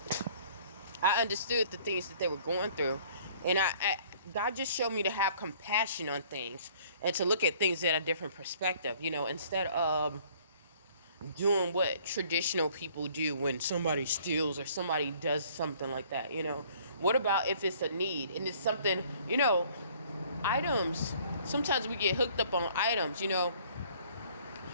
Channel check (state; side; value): inverted; both; correlation -0.57